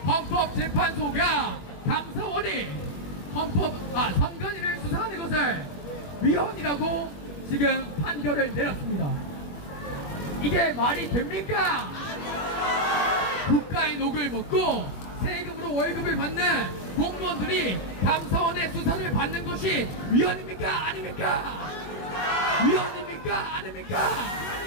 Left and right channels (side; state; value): right; late; 21 ms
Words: 헌법재판소가 감사원이 선관위를 수사하는 것을 위헌이라고 지금 판결을 내렸습니다. 이게 말이 됩니까? 국가의 녹을 먹고 세금으로 월급을 받는 공무원들이 감사원의 수사를 받는 것이 위헌입니까? 아닙니까? 위헌입니까? 아닙니까?